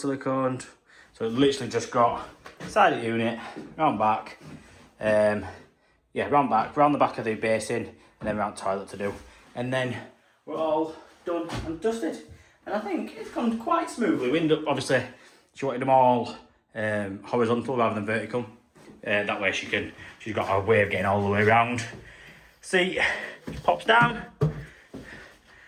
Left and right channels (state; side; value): identical; both; correlation 1.00